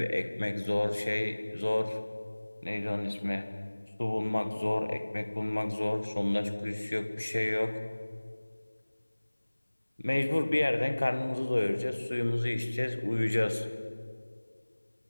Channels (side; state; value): both; inverted; correlation -1.00